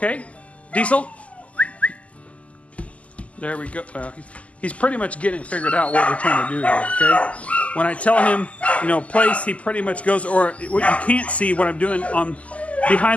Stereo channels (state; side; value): late; right; 0.067 ms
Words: Diesel? There we go. He's pretty much getting figured out what we're trying to do here, okay? When I tell him, you know, place, he pretty much goes, or what you can't see what I'm doing on